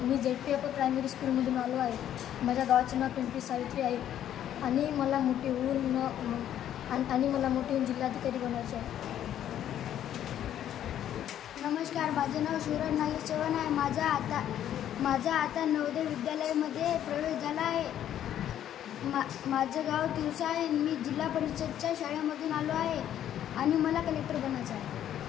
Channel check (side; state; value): right; quieter; 10.9 dB